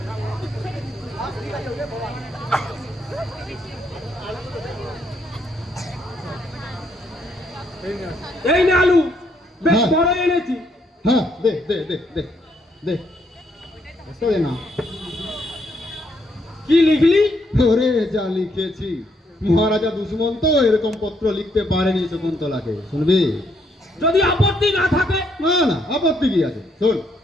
এই না আলু, বেশ হ্যাঁ। বড় এনেছি। হ্যাঁ, দে দে দে দে দে। বুঝতে দে না। কি লিখলি? ওরে যা লিখেছি, মহারাজা দুশ্মন তো এরকম পত্র লিখতে পারেনি শকুন্তলাকে। শুনবি? যদি আপত্তি না থাকে? না না, আপত্তি কি আছে? শোন।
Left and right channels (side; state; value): both; normal; correlation 0.73